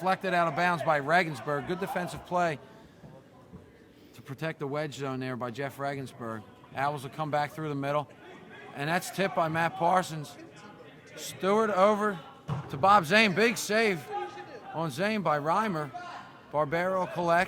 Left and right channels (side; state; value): both; identical; correlation 1.00